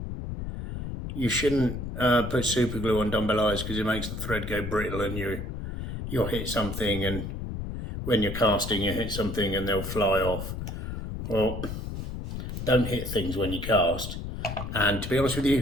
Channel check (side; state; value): left; noise; rumble, 6 dB below the sound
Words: you shouldn't put super glue on dumbbell eyes because it makes the thread go brittle and you'll hit something, and when you're casting you hit something and they'll fly off. Well, don't hit things when you cast, and to be honest with